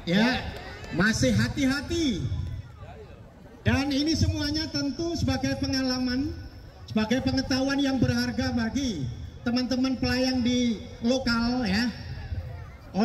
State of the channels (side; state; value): both; identical; correlation 1.00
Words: ya, masih hati-hati. Dan ini semuanya tentu sebagai pengalaman, sebagai pengetahuan yang berharga bagi teman-teman pelayang di lokal ya,